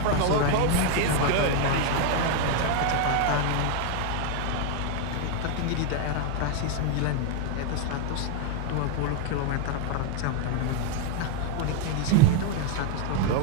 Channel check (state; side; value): different; both; correlation 0.01